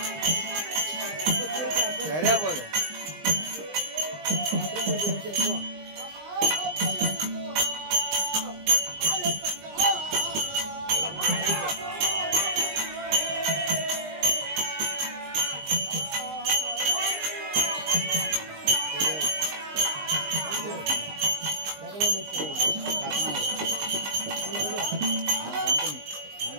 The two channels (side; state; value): left; late; 20 ms